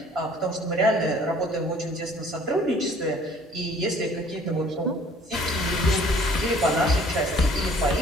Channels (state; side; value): normal; both; correlation 0.55